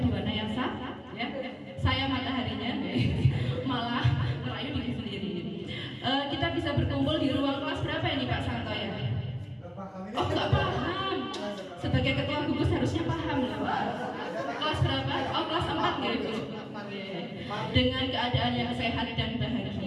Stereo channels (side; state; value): both; identical; correlation 1.00